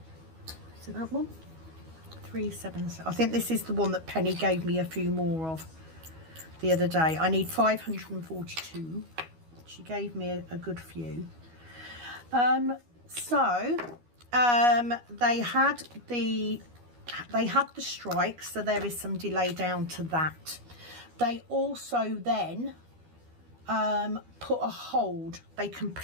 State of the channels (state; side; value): late; left; 12 ms